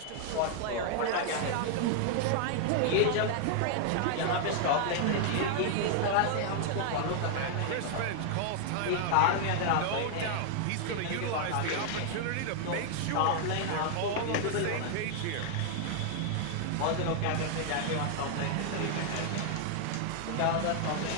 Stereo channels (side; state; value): both; different; correlation 0.00